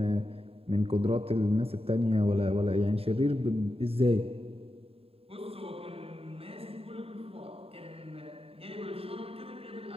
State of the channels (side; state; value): left; late; 0.28 ms